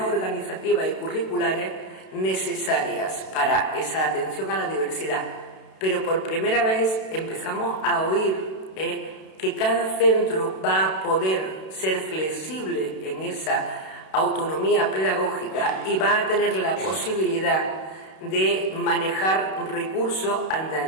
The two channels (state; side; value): late; right; 32 ms